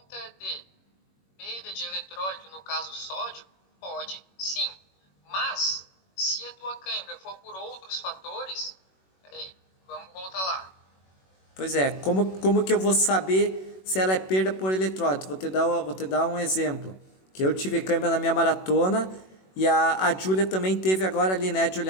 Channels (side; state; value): right; late; 21 ms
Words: de perda de eletrólito, no caso sódio, pode sim. Mas, se a tua cãibra for por outros fatores, peraí, vamos voltar lá. Pois é, como que eu vou saber se ela é perda por eletrólito? Vou te dar um exemplo. Que eu tive cãibra na minha maratona e a Júlia também teve agora ali, né,